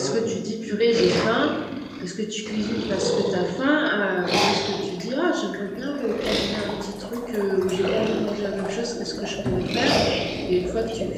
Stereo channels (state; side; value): identical; both; correlation 1.00